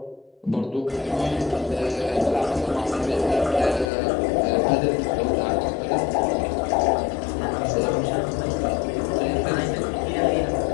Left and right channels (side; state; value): right; drops out; at 3.9 s